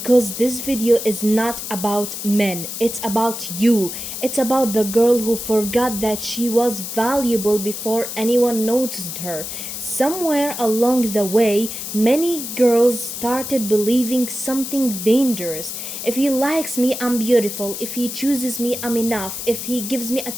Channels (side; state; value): left; noise; hiss, 7 dB below the sound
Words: this video is not about men. It's about you. It's about the girl who forgot that she was valuable before anyone noticed her. Somewhere along the way, many girls started believing something dangerous. If he likes me, I'm beautiful. If he chooses me, I'm enough. If he gives me